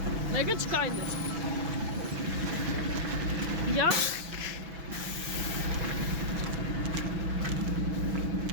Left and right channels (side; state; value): left; late; 6.1 ms